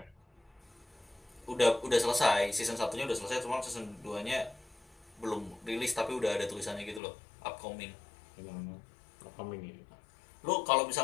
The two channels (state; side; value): drops out; right; at 7.0 s